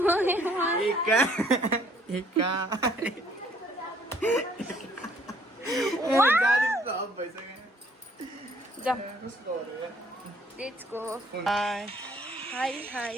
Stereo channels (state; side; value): normal; both; correlation 0.61